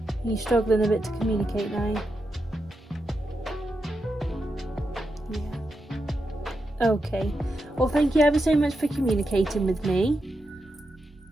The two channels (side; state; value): both; normal; correlation 0.86